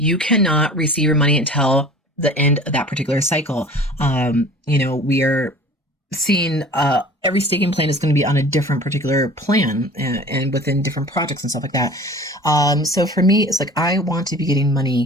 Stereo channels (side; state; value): both; normal; correlation 0.43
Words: cannot receive your money until the end of that particular cycle. We are seeing every staking plan is going to be on a different particular plan and within different projects and stuff like that. So for me, it's like I want to be getting